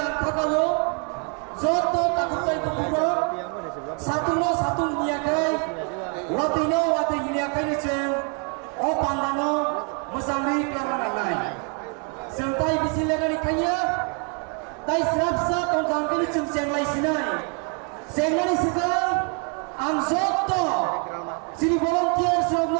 kakalo Zoto takutai kubur satu niakai wati niakai ni ceng o pandano musamri kelaranai sentai bisilaga ni kaya tai serapsa kongkang kini ceng lai sinai sengani sikal ang Zoto sini volunteer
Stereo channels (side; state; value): left; quieter; 38.2 dB